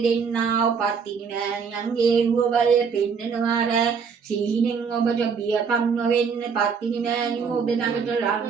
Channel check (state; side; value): quieter; left; 6.0 dB